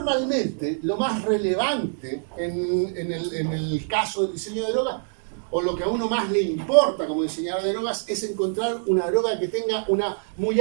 lo más relevante en el caso del diseño de drogas, o lo que a uno más le importa como diseñador de drogas, es encontrar una droga que tenga una muy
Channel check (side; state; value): left; silent; digital silence